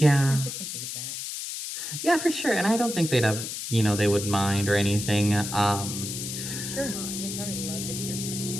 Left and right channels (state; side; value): noise; left; hiss, 6 dB below the sound